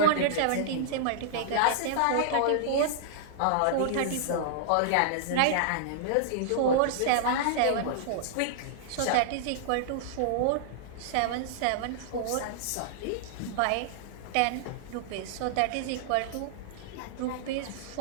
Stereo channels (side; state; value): both; different; correlation -0.01